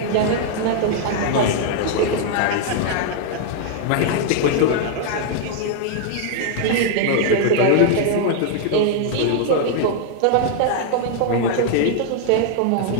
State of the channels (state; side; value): different; both; correlation 0.00